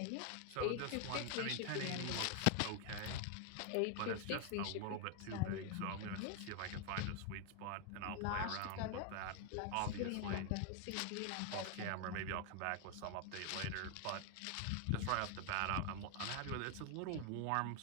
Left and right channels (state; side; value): different; both; correlation 0.01